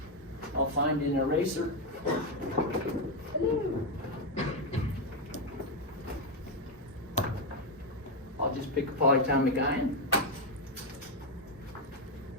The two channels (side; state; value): both; normal; correlation 0.05